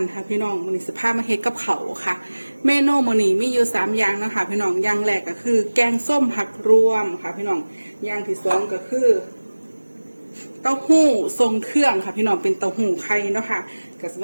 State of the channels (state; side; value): inverted; both; correlation -1.00